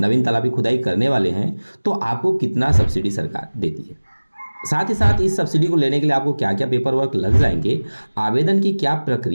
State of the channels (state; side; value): inverted; both; correlation -1.00